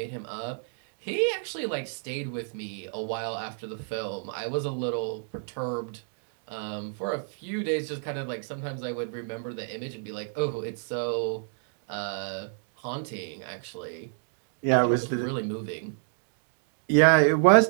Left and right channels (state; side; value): silent; left; digital silence